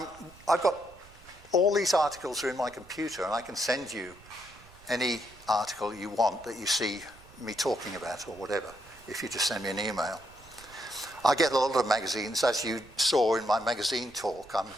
got all these articles are in my computer, and I can send you any article you want that you see me talking about or whatever, if you just send me an email. I get a lot of magazines, as you saw in my magazine talk. I'm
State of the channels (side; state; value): right; noise; rumble, 23 dB below the sound